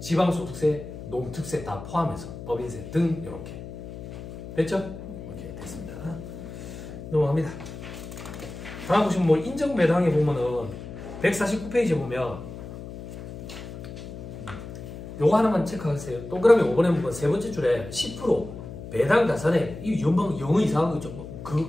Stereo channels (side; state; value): left; noise; hum, 11 dB below the sound